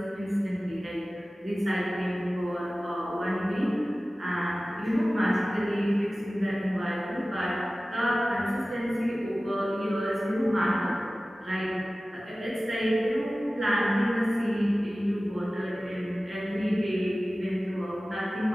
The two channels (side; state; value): both; normal; correlation 0.97